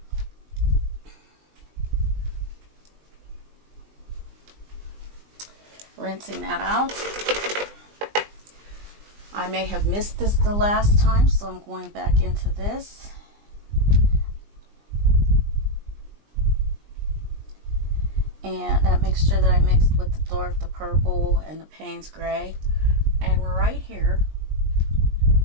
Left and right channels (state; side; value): late; left; 20 ms